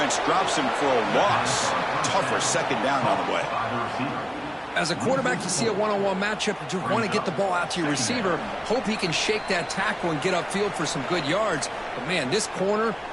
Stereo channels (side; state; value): both; identical; correlation 1.00